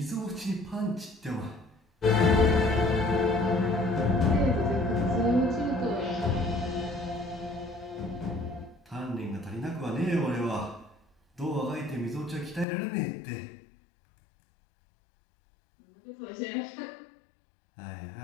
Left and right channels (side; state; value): right; drops out; at 12.7 s